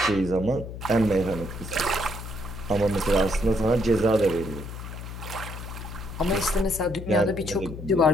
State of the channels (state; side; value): noise; left; hum, 10 dB below the sound